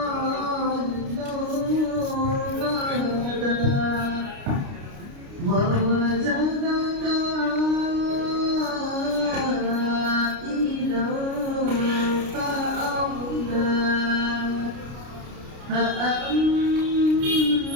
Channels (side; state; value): left; late; 29 ms